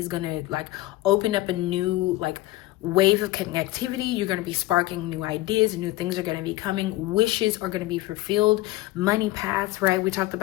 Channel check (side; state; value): right; quieter; 17.8 dB